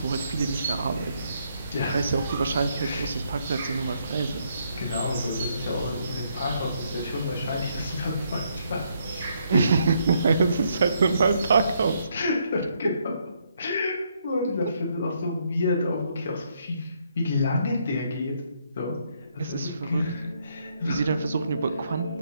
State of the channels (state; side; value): inverted; both; correlation -0.74